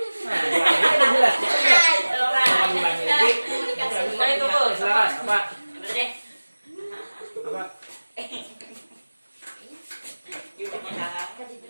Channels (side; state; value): both; inverted; correlation -1.00